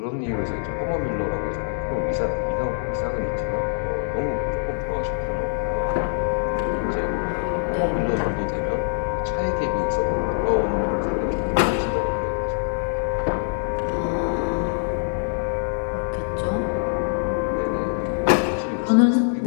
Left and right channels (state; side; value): silent; right; digital silence